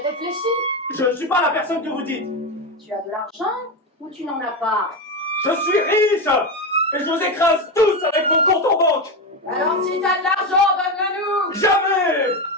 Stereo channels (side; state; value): both; normal; correlation 0.15